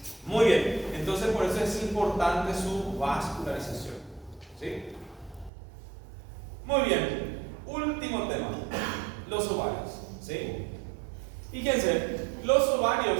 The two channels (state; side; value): drops out; left; at 5.5 s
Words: Muy bien, entonces por eso es importante su vascularización, ¿sí? Muy bien, último tema, los ovarios, ¿sí? Fíjense, los ovarios